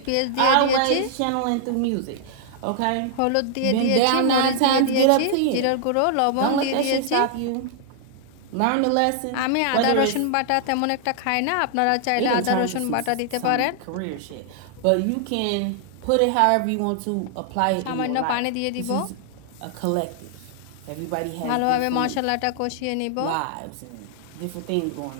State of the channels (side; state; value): both; different; correlation -0.01